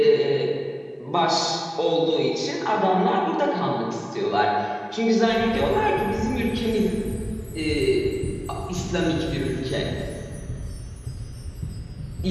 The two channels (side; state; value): both; identical; correlation 1.00